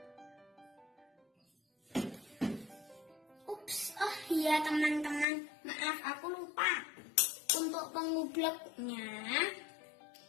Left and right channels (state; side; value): drops out; right; at 5.2 s